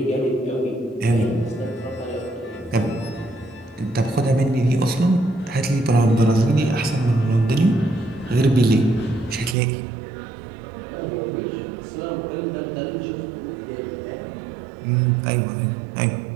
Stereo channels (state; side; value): drops out; left; at 9.6 s